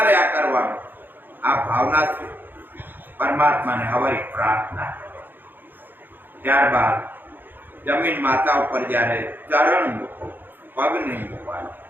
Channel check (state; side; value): late; left; 0.093 ms